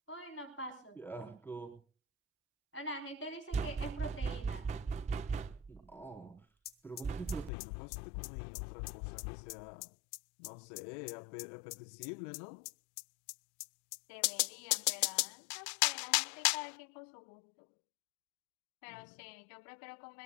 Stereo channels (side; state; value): right; drops out; at 7.5 s